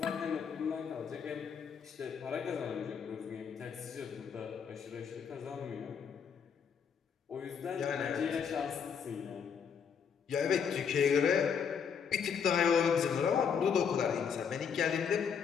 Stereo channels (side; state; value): right; quieter; 6.9 dB